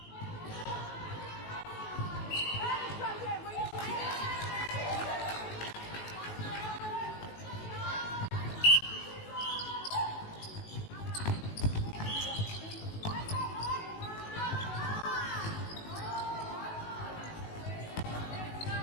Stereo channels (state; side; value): late; right; 19 ms